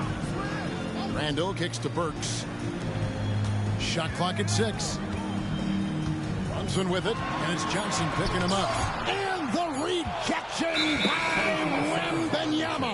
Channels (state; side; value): identical; both; correlation 1.00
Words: Randall kicks to Burks. Shot clock at 6. Brunson with it, and it's Johnson picking him up. And the rejection by